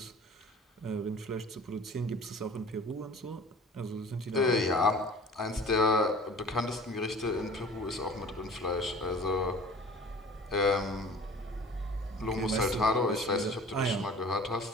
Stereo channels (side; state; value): both; normal; correlation 0.45